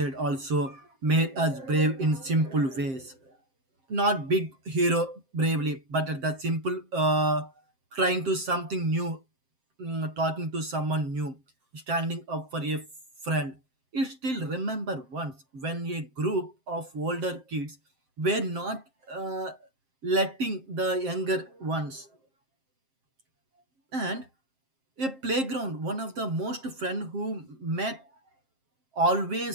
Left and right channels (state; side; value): late; left; 7.6 ms